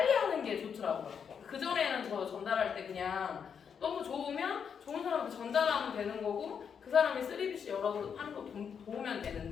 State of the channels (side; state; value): right; quieter; 7.1 dB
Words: 하는 게 좋더라고요. 그전에는 저 전달할 때 그냥 너무 좋으면 좋은 사람한테 전달하면 되는 거고 그 사람이 3BC 열어서 하는 거 도우면